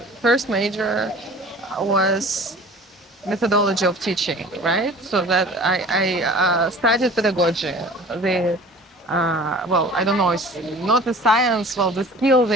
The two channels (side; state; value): both; normal; correlation 0.44